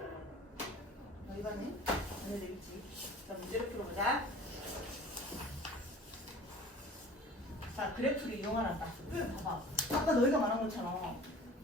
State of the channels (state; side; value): normal; both; correlation 0.43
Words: 이거는 안 해도 되겠지. 자, 문제를 풀어보자. 자, 그래프를 이용하란다. 그래, 봐봐. 아까 너희가 말한 것처럼